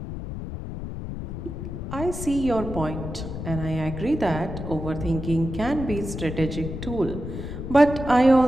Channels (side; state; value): left; noise; rumble, 7 dB below the sound